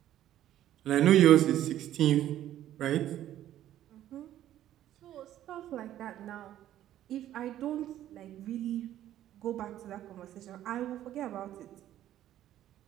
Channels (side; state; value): left; quieter; 12.4 dB